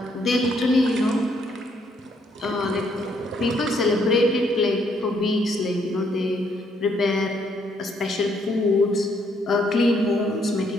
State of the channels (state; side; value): normal; both; correlation 0.71